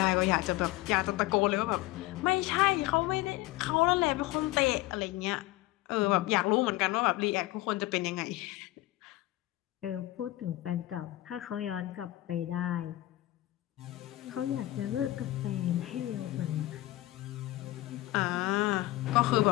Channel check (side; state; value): right; quieter; 17.2 dB